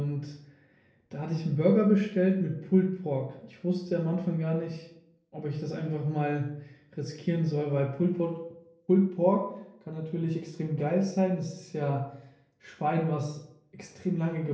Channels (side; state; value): both; identical; correlation 1.00